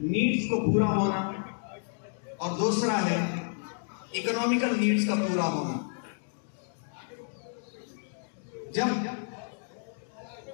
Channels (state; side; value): silent; right; 58 dB below the other